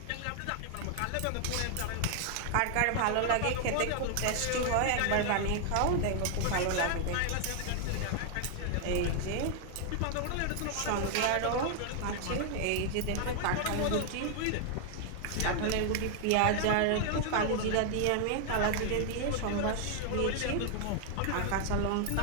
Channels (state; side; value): different; both; correlation 0.00